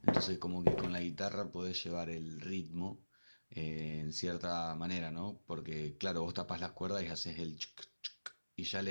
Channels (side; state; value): both; inverted; correlation -1.00